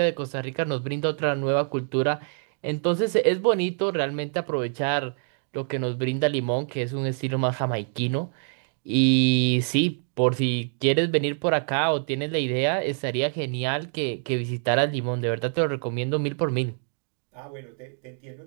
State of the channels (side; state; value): left; silent; 61 dB below the other